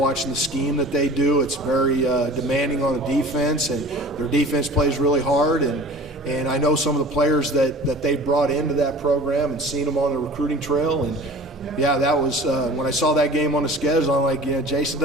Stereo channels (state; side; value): normal; both; correlation 0.42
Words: the scheme that they do. It's very demanding on the defense, and their defense plays really hard. And I know some of the players that they brought into that program and seen them on the recruiting trail. And yeah, that was when I saw that game on the schedule. I'm like, Jason